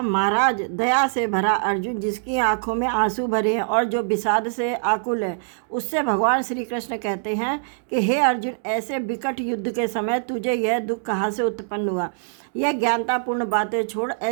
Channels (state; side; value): silent; left; digital silence